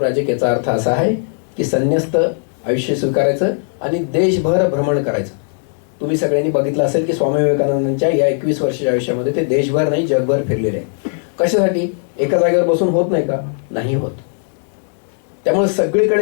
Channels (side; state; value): right; silent; digital silence